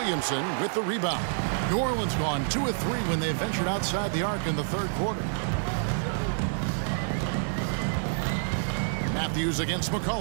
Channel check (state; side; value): silent; left; digital silence